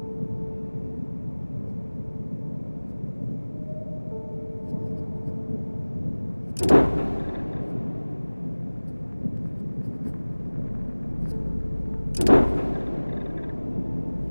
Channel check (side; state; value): both; inverted; correlation -1.00